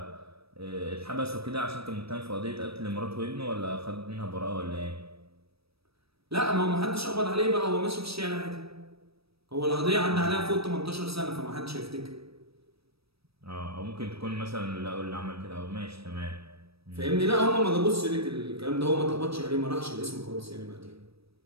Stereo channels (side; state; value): left; late; 0.77 ms